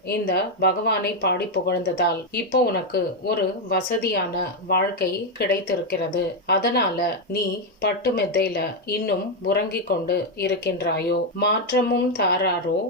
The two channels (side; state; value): both; normal; correlation 0.04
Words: இந்த பகவானை பாடி புகழ்ந்ததால் இப்போ உனக்கு ஒரு வசதியான வாழ்க்கை கிடைத்திருக்கிறது. அதனால நீ பட்டு மெத்தையில இன்னும் உறங்கிக் கொண்டு இருக்கின்றாயோ? மாற்றமும் தாராரோ